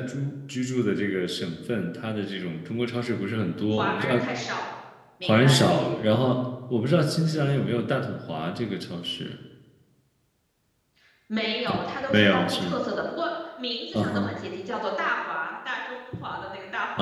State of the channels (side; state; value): both; identical; correlation 1.00